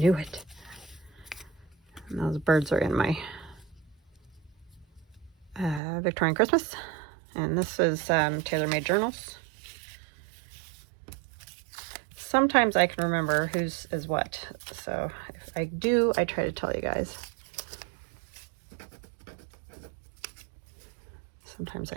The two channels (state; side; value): drops out; left; at 5.8 s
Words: it. And those birds are in my Victorian Christmas. And this is tailor-made journals. Sometimes I can remember whose is what. So if I do, I try to tell you guys. Sometimes